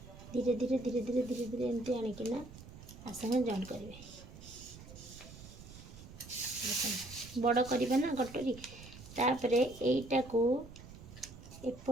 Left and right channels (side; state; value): right; noise; rumble, 16 dB below the sound